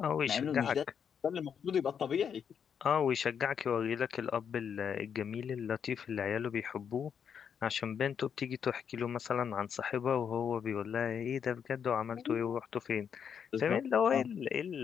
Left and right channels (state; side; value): quieter; right; 7.5 dB